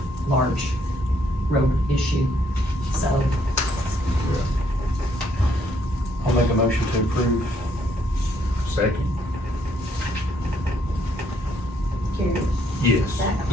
large road issue, so. I'll make a motion to approve. Second? Carrie? Yes.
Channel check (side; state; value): both; normal; correlation 0.69